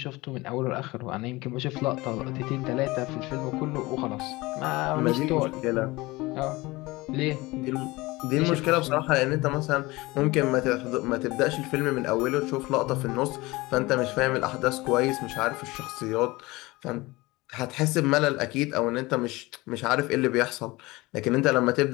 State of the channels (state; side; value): quieter; right; 21.4 dB